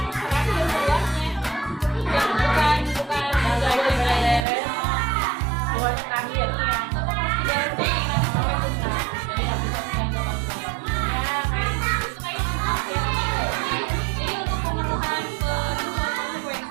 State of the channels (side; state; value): left; drops out; at 4.5 s